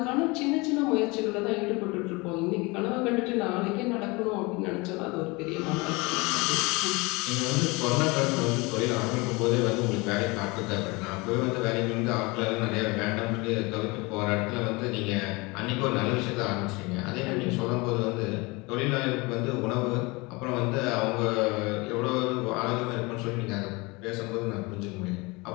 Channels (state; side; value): quieter; right; 25.5 dB